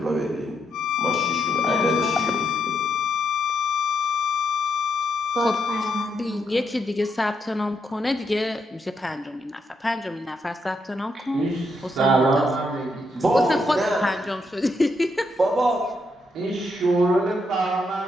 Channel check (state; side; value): normal; both; correlation 0.79